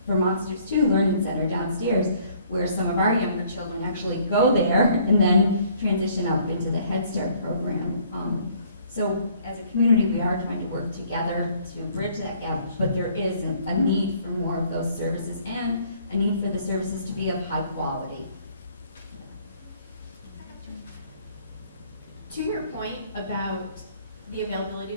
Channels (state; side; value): inverted; both; correlation -0.60